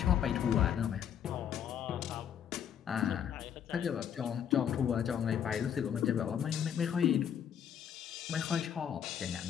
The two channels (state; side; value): quieter; right; 8.9 dB